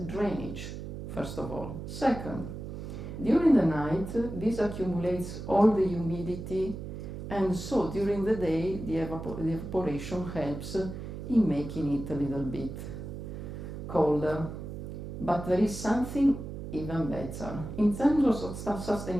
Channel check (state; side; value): noise; right; hum, 8 dB below the sound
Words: first of all. Second, during the night, this accumulates all the humidity, and so during the day, the evaporation helps in making it a little bit colder. But there is something even better. In terms of